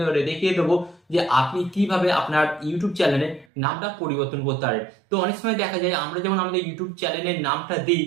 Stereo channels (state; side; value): drops out; left; at 3.5 s